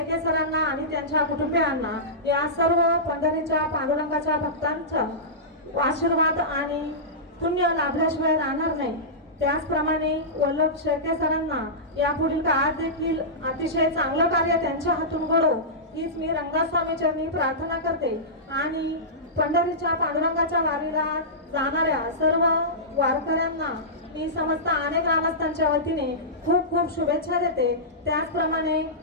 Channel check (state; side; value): normal; both; correlation -0.17